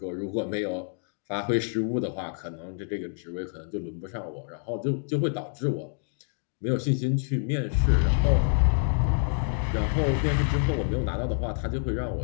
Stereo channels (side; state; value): right; silent; 60 dB below the other